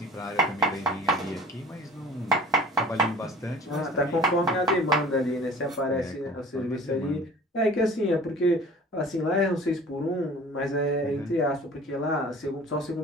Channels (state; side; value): normal; both; correlation 0.45